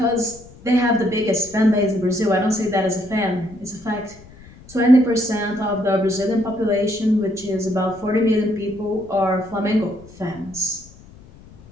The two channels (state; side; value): noise; left; rumble, 22 dB below the sound